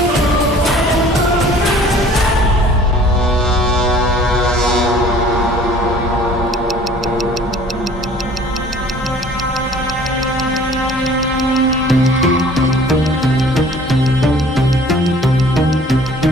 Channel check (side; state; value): both; normal; correlation 0.51